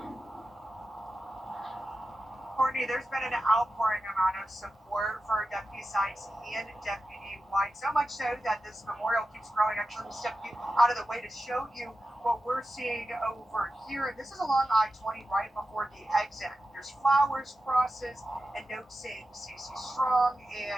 Courtney, there's been an outpouring amount of support for Deputy Sykes and Deputy White, so much so that this memorial keeps growing. Actually, let me step you out of the way to show you what we're seeing over here. This is along I-20 right before the exit. There's flowers, crosses, and notes saying CC Strong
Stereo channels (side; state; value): both; normal; correlation 0.92